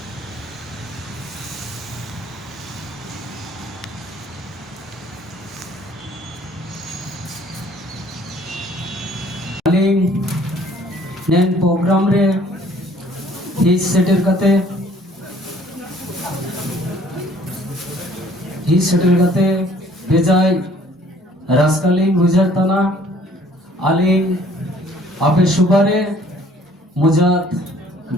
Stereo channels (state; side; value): normal; both; correlation 0.57